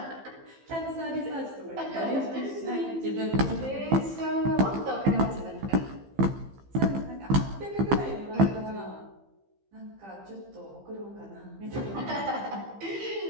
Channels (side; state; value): left; late; 15 ms